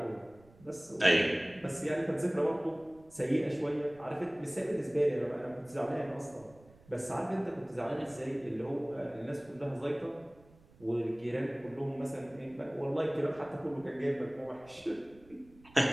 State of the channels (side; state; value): right; noise; rumble, 26 dB below the sound